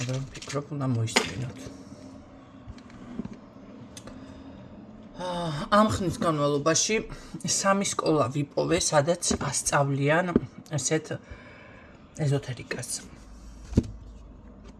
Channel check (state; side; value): identical; both; correlation 1.00